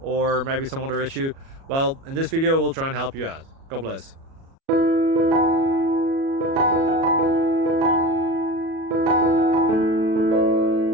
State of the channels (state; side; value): late; left; 37 ms